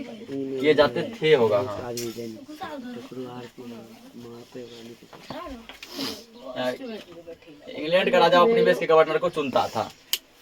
होगा। हाँ, इंग्लैंड का राजा उपनिवेश के गवर्नर को चुनता था,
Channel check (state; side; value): identical; both; correlation 1.00